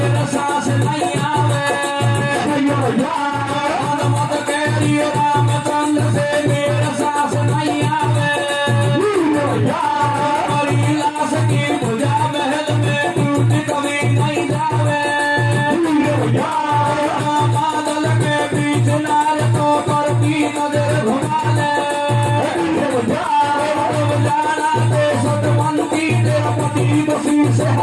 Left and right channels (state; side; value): identical; both; correlation 1.00